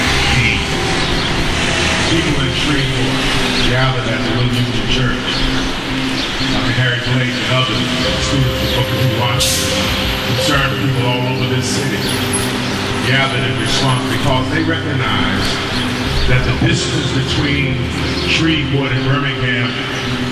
deed, people in Shreveport gathered at the Little Union Church. Harry Blake and others, students of Booker T. Washington, concerned people all over this city, gathered in response because they recognized that the distance between Shreveport and Birmingham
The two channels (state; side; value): identical; both; correlation 1.00